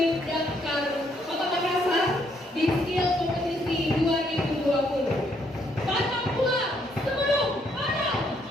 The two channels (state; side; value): normal; both; correlation 0.71